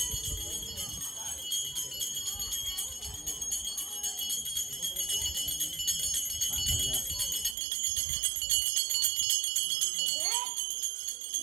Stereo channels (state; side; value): drops out; left; at 7.6 s